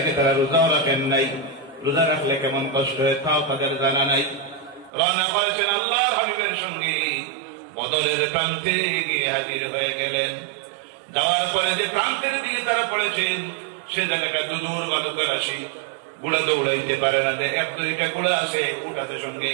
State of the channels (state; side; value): drops out; left; at 4.9 s